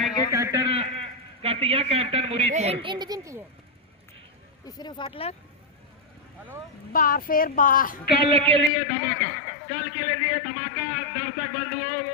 कैप्टन कर दिया, कैप्टन मुरीदपुर। तीसरे फाटलर बार फेर बार। कल के लिए धमाका, कल के लिए धमाका। दर्शक बंधुओं,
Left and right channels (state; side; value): drops out; right; at 8.7 s